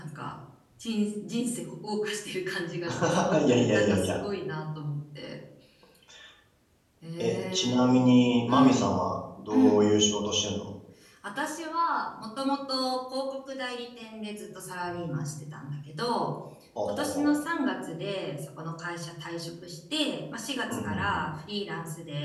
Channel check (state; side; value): identical; both; correlation 1.00